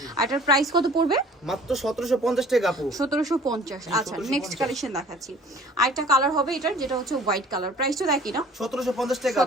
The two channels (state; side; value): normal; both; correlation 0.50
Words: আর এটার প্রাইস কত পড়বে? মাত্র 1750 টাকা আপু। 1750। আচ্ছা, নেক্সট কালেকশন দেখাচ্ছি। আরেকটা কালার হবে এটার, যেটা হচ্ছে হোয়াইট কালার। প্রাইসটা দেখি না, 1750 টাকা।